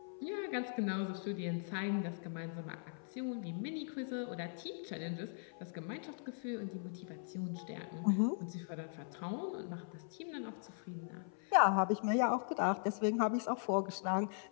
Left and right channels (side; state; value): right; silent; 51 dB below the other